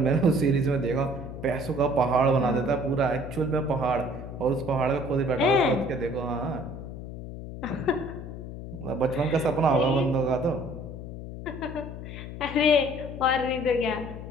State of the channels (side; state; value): left; noise; hum, 10 dB below the sound